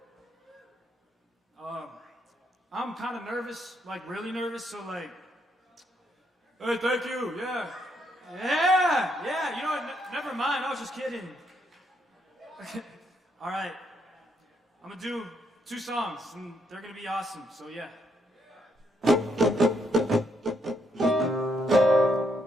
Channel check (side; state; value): both; normal; correlation 0.75